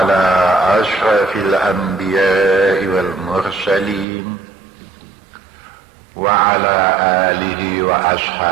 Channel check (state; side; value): drops out; left; at 4.0 s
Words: أشرف الأنبياء والمرسلين وعلى آله